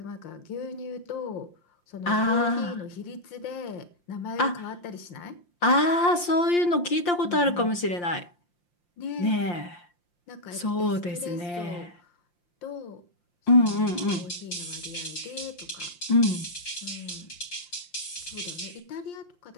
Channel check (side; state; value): right; late; 5.7 ms